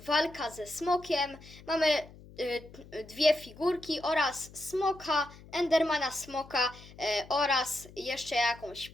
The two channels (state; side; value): noise; left; hum, 20 dB below the sound